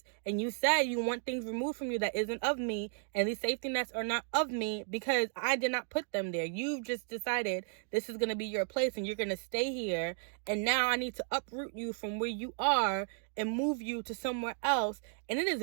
and you said you want things removed from you that isn't of me, and these safety nets are not of me because I did not put them there. You've just decided this is going to be your place and you're going to stay here, and now I need to uproot you from where you are and move you to somewhere else, and it is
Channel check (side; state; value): left; silent; 55 dB below the other